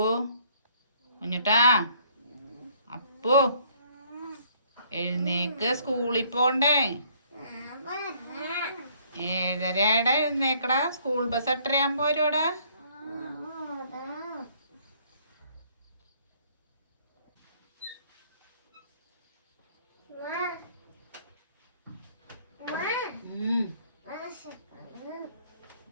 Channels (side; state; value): both; inverted; correlation -0.62